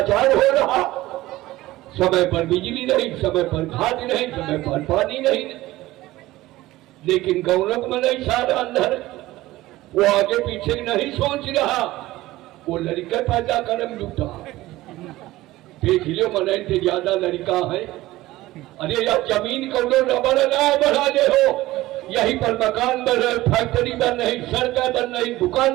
हो रहा। समय पर बिजली नहीं, समय पर खाद नहीं, समय पर पानी नहीं। लेकिन गौरव में नहीं सारा अंदर, वो आगे पीछे नहीं सोच रहा, वो लड़का पैदा करम जुटा। देख लो मन से ज्यादा लड़का है। अरे यार जमीन को रबड़ ना बढ़ा दे हो, यहीं पर मकान बन रहे, फैक्ट्री बन रही, सड़कें बन रही,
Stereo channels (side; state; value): left; quieter; 17.3 dB